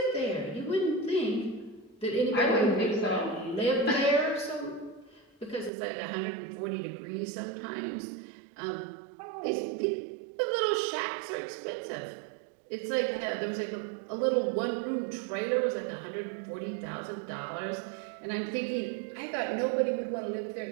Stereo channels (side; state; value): left; drops out; at 5.7 s